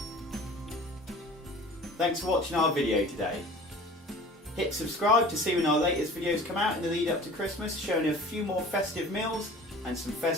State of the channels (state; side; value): normal; both; correlation 0.43